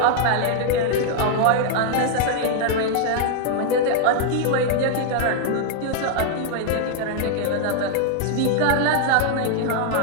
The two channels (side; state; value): both; different; correlation 0.00